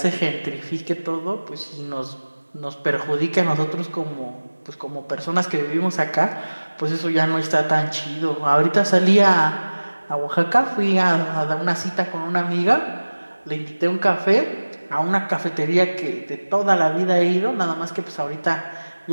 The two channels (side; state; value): both; inverted; correlation -1.00